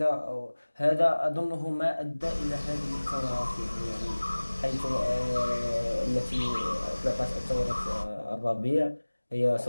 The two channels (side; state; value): both; inverted; correlation -1.00